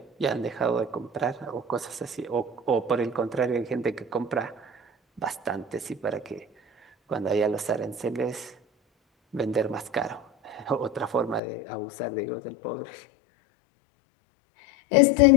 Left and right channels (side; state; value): right; drops out; at 11.4 s